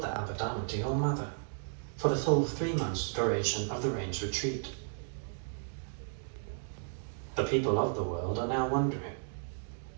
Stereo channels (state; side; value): silent; left; digital silence